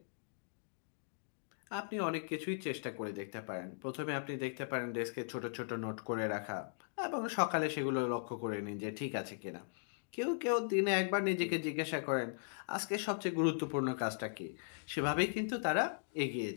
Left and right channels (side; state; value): right; silent; digital silence